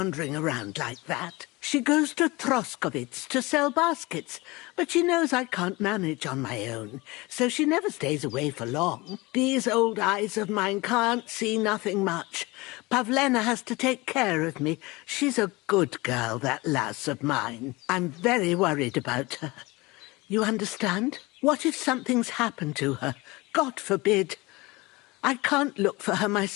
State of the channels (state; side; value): quieter; right; 22.9 dB